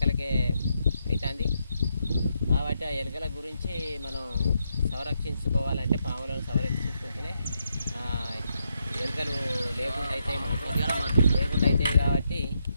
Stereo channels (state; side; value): inverted; both; correlation -0.80